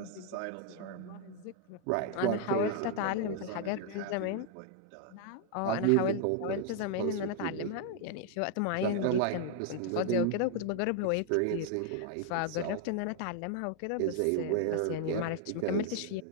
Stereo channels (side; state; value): both; different; correlation 0.00